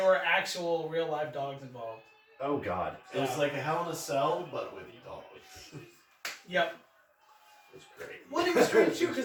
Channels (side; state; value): both; identical; correlation 1.00